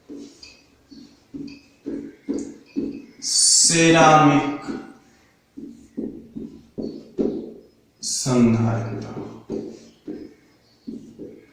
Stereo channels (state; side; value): identical; both; correlation 1.00